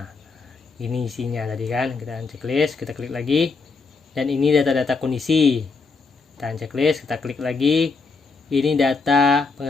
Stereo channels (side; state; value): right; quieter; 4.3 dB